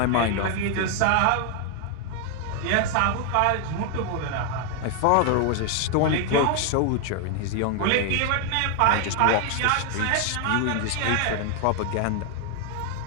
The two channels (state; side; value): different; both; correlation 0.00